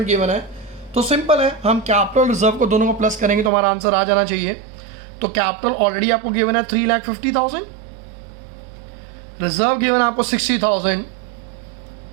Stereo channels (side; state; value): left; drops out; at 3.5 s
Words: गिवन है। तो सिंपल है, हम कैपिटल रिजर्व को दोनों को प्लस करेंगे तो हमारा आंसर आ जाना चाहिए। तो कैपिटल ऑलरेडी आपको गिवन है 3,50,000, रिजर्व गिवन है आपको 60,000,